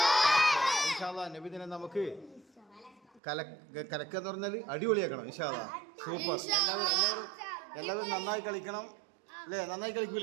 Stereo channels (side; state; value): left; drops out; at 3.2 s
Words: ഇൻഷാ അല്ലാഹ് നബിദിനം നമുക്ക് കലക്കെന്ന് പറഞ്ഞാൽ അടിപൊളിയാക്കണം. ഇൻഷാ അല്ലാഹ് സൂപ്പർ. എല്ലാവരും നന്നായി കളിക്കണം അല്ലേ? നന്നായി